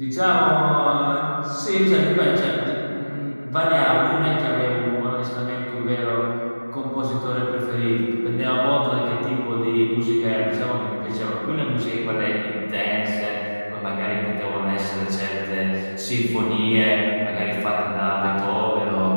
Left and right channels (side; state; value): both; inverted; correlation -1.00